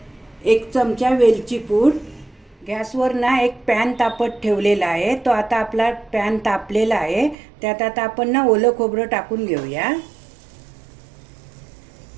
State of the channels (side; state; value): left; drops out; at 7.4 s